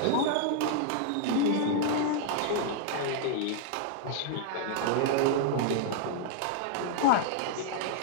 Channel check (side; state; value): both; different; correlation -0.01